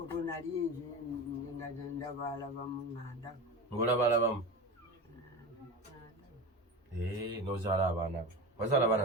olwo nali nga ndabalabamu nganda ng'olabalabamu n'ozaala abaana be wazaala abaana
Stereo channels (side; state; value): both; normal; correlation 0.28